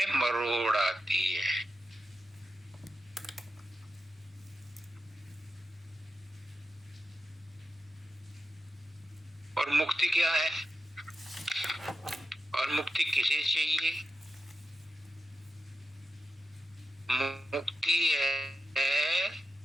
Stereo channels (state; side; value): normal; both; correlation 0.89